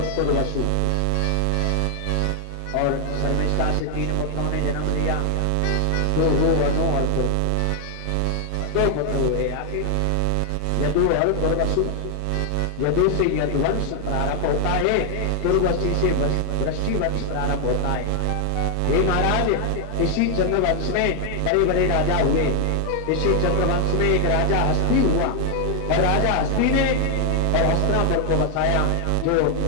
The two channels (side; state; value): both; different; correlation 0.00